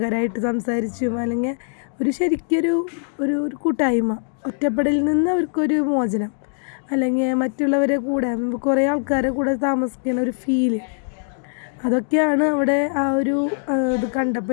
സംസാരിച്ചും അല്ലെങ്കിൽ ഒരു ശരിക്കൊരു ഒരു കൂട്ടായ്മ, ഒറ്റപ്പെടലിൽ നിന്ന് അവർക്കൊരു മോചനം, അല്ലെങ്കിൽ മറ്റുള്ളവരെ കൂടെ കുറേ ആൾക്കാരെ കൂടെ താമസിക്കുന്ന ഒരു ഫീല്, അതൊക്കെയാണ് അവിടെ ആ ഒരു ഇത്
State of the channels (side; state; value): right; silent; digital silence